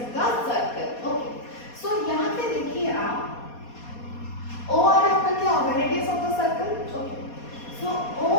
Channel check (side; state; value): right; late; 4.2 ms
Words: the circle. Okay, so यहाँ पे देखिए आप ओ आर आपका क्या होगा, radius of the circle. Okay, so O